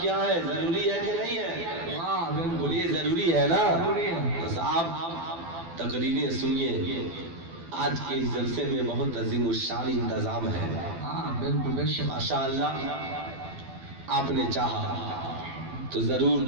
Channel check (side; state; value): left; late; 12 ms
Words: ہے، ضروری ہے کہ نہیں ہے؟ بولیے ضروری ہے نا؟ بس آپ تقریریں سنیے، آج کے اس جلسے میں بہت عظیم الشان انتظام ہے۔ ماشاءاللہ آپ نے چاہا تو ضرور